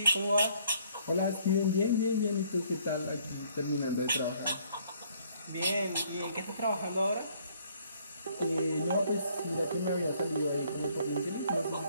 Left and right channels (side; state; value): both; inverted; correlation -0.64